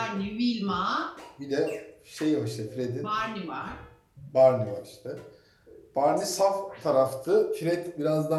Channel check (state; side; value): identical; both; correlation 1.00